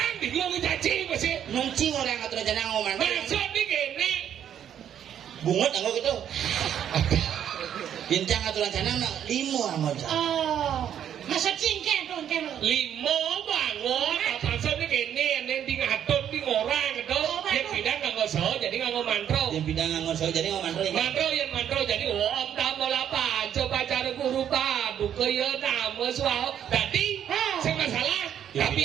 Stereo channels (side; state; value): left; quieter; 9.6 dB